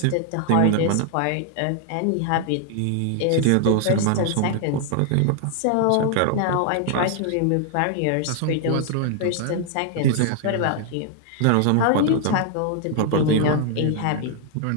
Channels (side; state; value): both; different; correlation 0.00